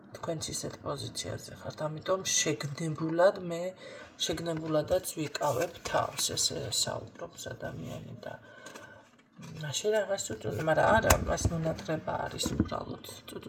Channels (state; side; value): identical; both; correlation 1.00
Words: თქვენც ისეთ პოზიციაზე ხართ, ამიტომ შეგნებულადაც ვიკავებ თავს, ესე საუბრობს ადამიანი და მაშინ რაღაც წუწუნი, მაგრამ არა, მას მონატრება არის უბრალოდ.